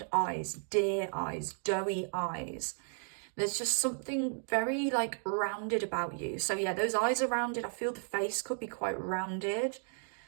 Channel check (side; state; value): left; silent; 55 dB below the other